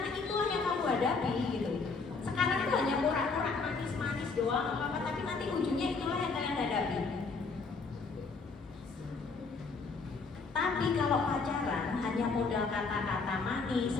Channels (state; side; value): quieter; right; 4.4 dB